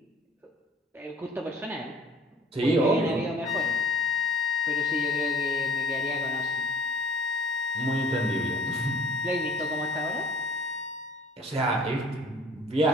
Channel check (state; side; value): normal; both; correlation 0.51